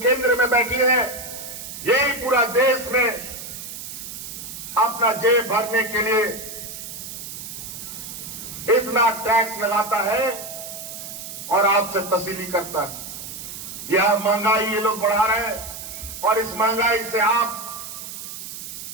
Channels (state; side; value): noise; right; hiss, 10 dB below the sound